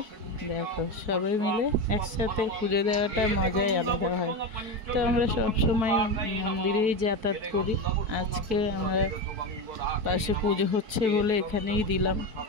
দেখো সবাই মিলে একসাথে পুজো দেওয়াটা মজাই আলাদা হয়। তো আমরা সব সময় মন্দিরেই যাতায়াত করি। আজকে আমরা পাশে পুজো হচ্ছে বলে এখানেই দিলাম।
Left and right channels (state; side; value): late; left; 4.6 ms